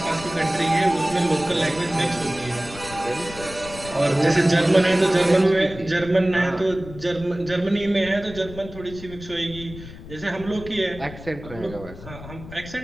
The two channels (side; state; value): left; noise; rumble, 15 dB below the sound